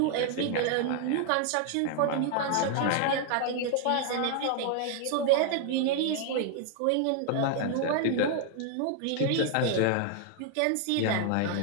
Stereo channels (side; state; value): both; different; correlation 0.00